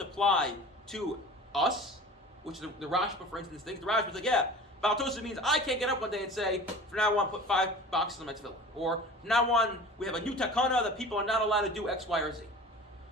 to us, which the Rashba, for instance, thinks. The Rashba is like, yeah, Bal Tosef means I can't get up one day and say, from now on, put 5 boxes on my tefillah. Or, from now on, we have a new takana that people are not allowed to do X, Y, or Z.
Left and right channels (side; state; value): both; normal; correlation 0.40